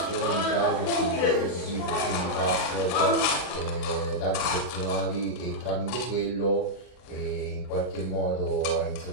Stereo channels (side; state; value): right; late; 39 ms